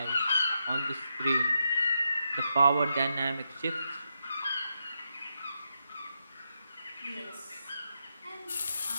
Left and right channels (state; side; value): inverted; both; correlation -0.83